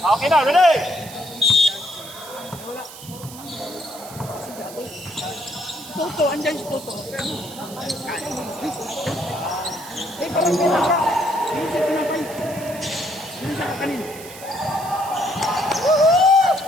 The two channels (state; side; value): noise; right; hiss, 15 dB below the sound